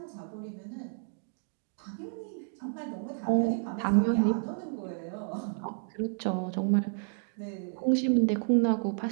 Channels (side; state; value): left; silent; 57 dB below the other